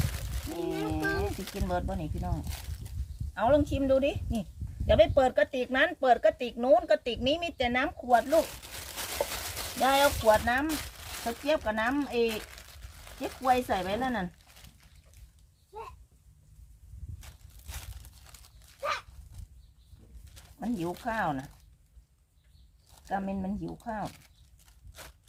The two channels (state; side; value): identical; both; correlation 1.00